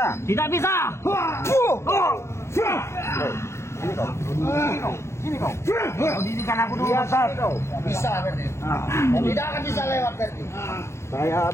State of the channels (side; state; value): right; late; 0.13 ms